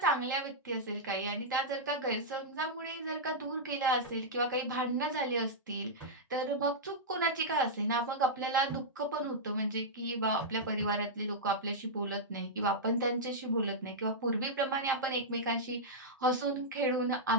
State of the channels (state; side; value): normal; both; correlation -0.09